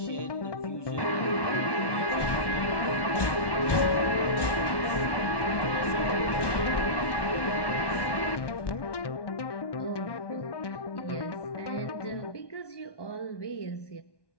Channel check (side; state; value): right; late; 1.1 ms